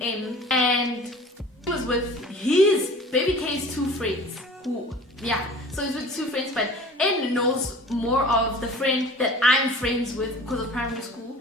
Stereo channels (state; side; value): normal; both; correlation 0.44